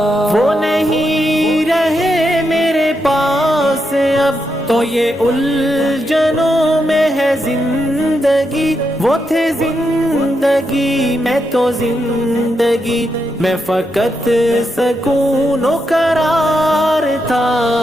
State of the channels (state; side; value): normal; both; correlation 0.83